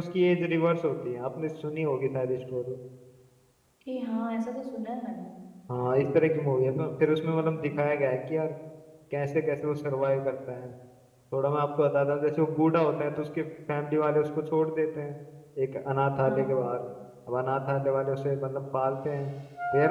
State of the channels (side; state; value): both; identical; correlation 1.00